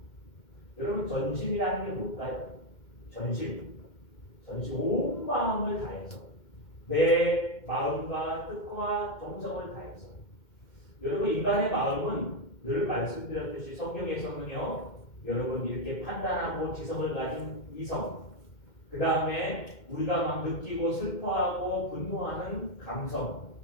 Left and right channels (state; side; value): late; right; 2.1 ms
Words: 여러분 전심이라는 게 뭘까요? 전심 온 마음을 다해서 내 마음과 뜻과 정성을 다해서. 여러분 인간의 마음은 늘 말씀드렸듯이 성경에서는요, 여러분 이렇게 판단하고 지성을 가진 이성, 그 다음에 우리가 막 느끼고 슬퍼하고 분노하는 감성,